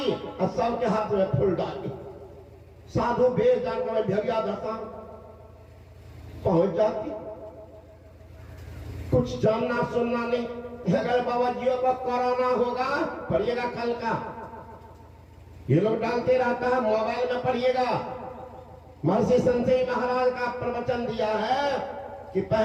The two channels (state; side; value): identical; both; correlation 1.00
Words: और सबके हाथ में फूल डाली। साधु भेज जाकर भेड़िया धसान पहुंच जाती, कुछ जानना सुनना नहीं। अगर बाबा जी को कोरोना होगा पढ़िएगा कल का, ये लोग डालते रहता है मोबाइल में, पढ़िएगा। महर्षि संजय महाराज का प्रवचन दिया है कि